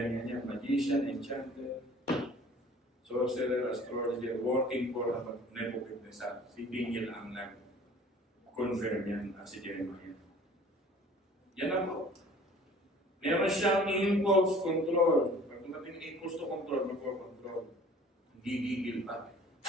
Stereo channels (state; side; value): normal; both; correlation 0.49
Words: yan. Magician, enchanter, sorcerer, astrologer, working for Nebuchadnezzar. Si Daniel ang nag-confirm yan at si Jeremiah. Yan ako. Meron siyang impulse control. Pag tumating impulse to control, mag-control. Gigigil pa.